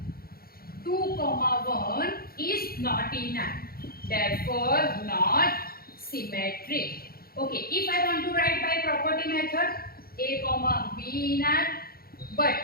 2, 1 is not in R, therefore not symmetric. Okay, if I want to write by property method, A, B in R, but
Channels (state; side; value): late; right; 0.44 ms